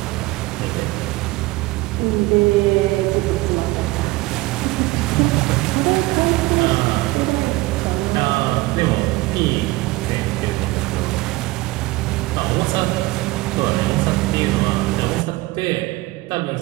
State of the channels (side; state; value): left; quieter; 20.4 dB